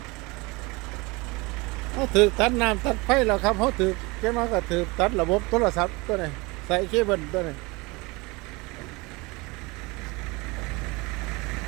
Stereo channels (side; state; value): left; quieter; 25.1 dB